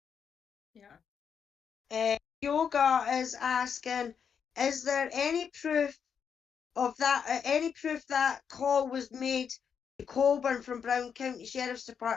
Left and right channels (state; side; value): quieter; right; 7.1 dB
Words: Yeah. Yoga is asking, is there any proof of that, any proof that call was made to Colburn from Brown County Sheriff's